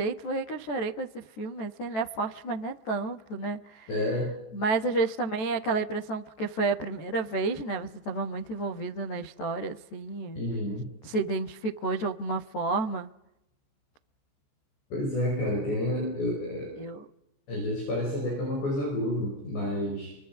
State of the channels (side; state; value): right; late; 14 ms